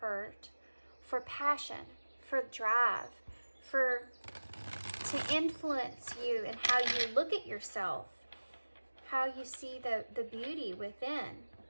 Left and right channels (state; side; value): inverted; both; correlation -1.00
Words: for passion, for drive, to influence you and how you look at yourself, how you see the beauty within,